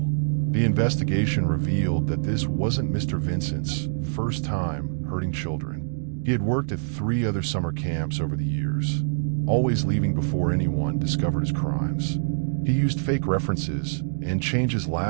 The investigation revealed that this wasn't Mr. Vincent's first time hurting children. He had worked at 3 other summer camps over the years, always leaving before anyone discovered his crimes. He used fake references and changed his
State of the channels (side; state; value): left; silent; digital silence